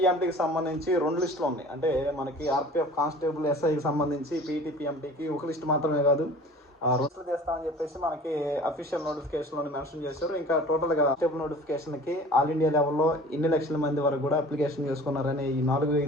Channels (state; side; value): normal; both; correlation 0.44